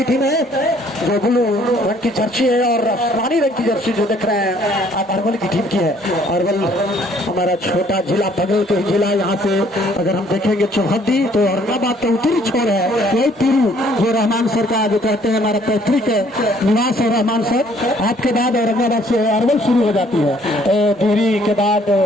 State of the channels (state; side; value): normal; both; correlation 0.61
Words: टीम है जो ब्लू रंग की जर्सी है और आसमानी रंग की जर्सी जो देख रहे हैं आप अरवल की टीम की है। अरवल हमारा छोटा जिला, बगल के जिला। यहाँ से अगर हम देखेंगे चौहद्दी तो औरंगाबाद का उत्तरी छोर है, वही पीरू जो रहमान सर का जो कहते हैं हमारा पैतृक निवास है रहमान सर। आपके बाद औरंगाबाद से अरवल शुरू हो जाती है, डिहरी के बाद